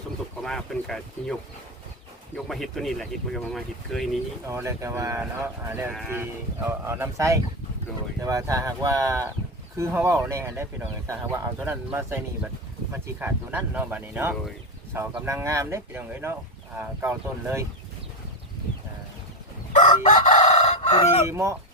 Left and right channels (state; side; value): normal; both; correlation 0.12